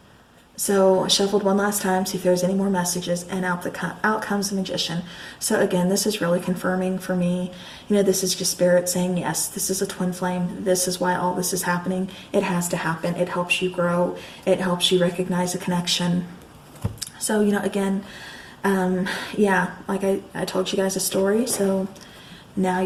so I shuffled one last time, see if there's any more messages, and out comes the Magician. So again, this is really confirming for me. You know, this is just Spirit saying, yes, this is a twin flame. This is why all this is happening. It has to happen. It helps you grow. It helps you recognize a connection. So, you know, again, yeah, like I told you guys a story, so now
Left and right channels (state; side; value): identical; both; correlation 1.00